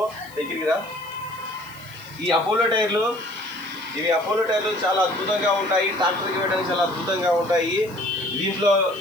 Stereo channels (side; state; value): left; noise; hiss, 23 dB below the sound